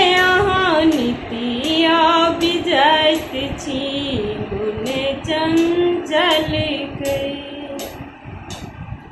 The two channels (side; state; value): both; identical; correlation 1.00